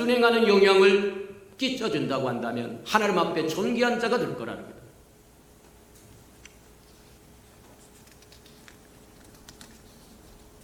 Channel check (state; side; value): identical; both; correlation 1.00